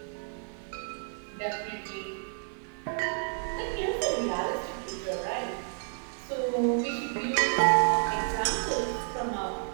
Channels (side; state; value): left; silent; 56 dB below the other